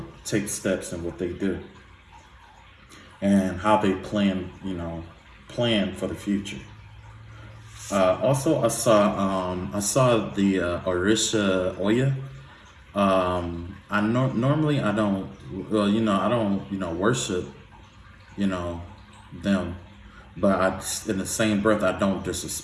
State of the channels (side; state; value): both; identical; correlation 1.00